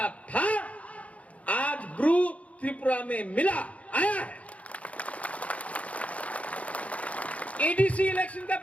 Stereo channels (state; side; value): late; right; 0.066 ms